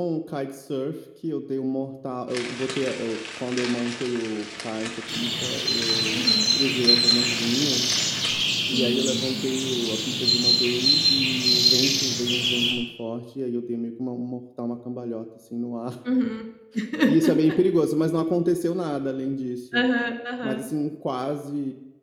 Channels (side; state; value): both; identical; correlation 1.00